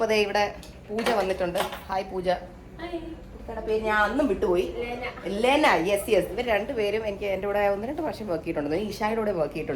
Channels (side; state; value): both; identical; correlation 1.00